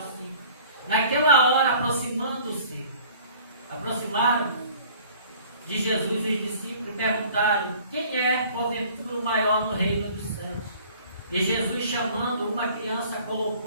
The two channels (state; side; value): inverted; both; correlation -0.50